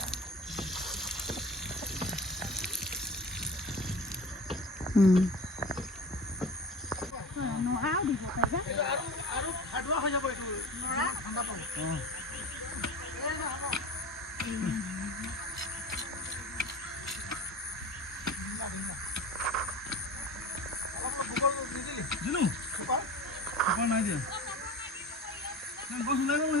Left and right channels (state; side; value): normal; both; correlation 0.35